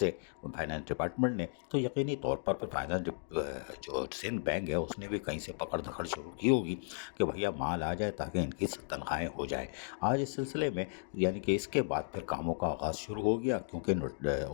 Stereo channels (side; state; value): right; silent; digital silence